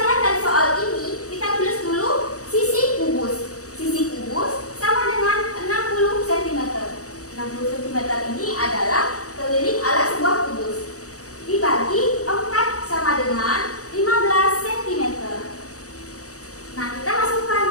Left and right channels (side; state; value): right; late; 0.66 ms